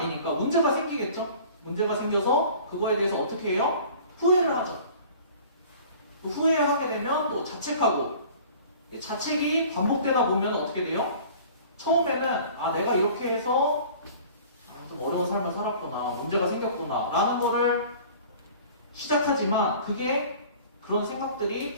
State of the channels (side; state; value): both; inverted; correlation -0.46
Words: 문제가 생기겠죠? 문제가 생겨서 그거에 대해서 어떻게 해요? 후회를 하죠. 후회하게 되면 또 자책하고 자책이 반복되다 보면 어떻게 돼요? 처음에는 내가 이렇게 해서 좀 어려운 삶을 살았구나 문제가 생겼구나 라는 거를 시작하지만 그게 그런